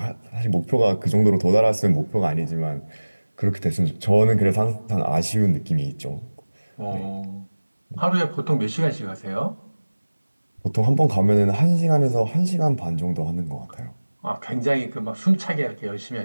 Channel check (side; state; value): both; inverted; correlation -1.00